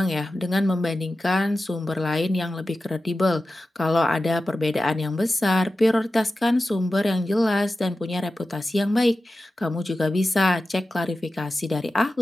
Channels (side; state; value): both; normal; correlation 0.93